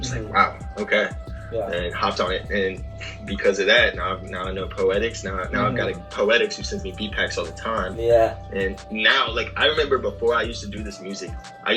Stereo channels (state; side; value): identical; both; correlation 1.00